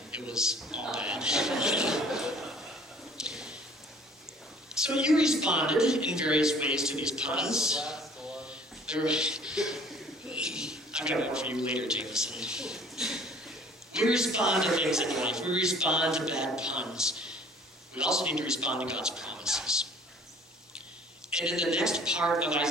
It was all bad. So you responded in various ways to these puns. I've got more for you later, Jameson. We respond to things in life. We respond to bad puns. We also need to respond to God's promises. And in the next part of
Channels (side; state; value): both; normal; correlation 0.52